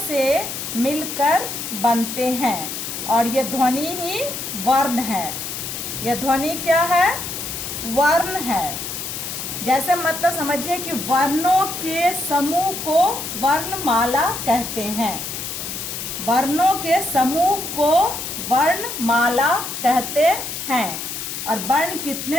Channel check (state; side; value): noise; left; hiss, 6 dB below the sound